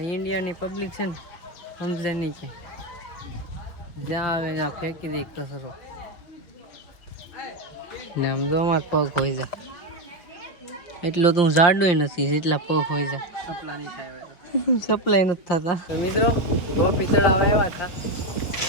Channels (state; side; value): late; right; 5.6 ms